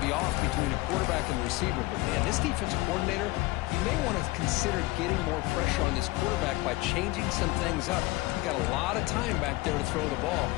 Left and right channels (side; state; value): right; quieter; 20.6 dB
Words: off between a quarterback and the receiver. But, man, this defensive coordinator, you may want to consider getting more pressure on this quarterback by changing some things up. You've got a lot of time back there to throw the ball.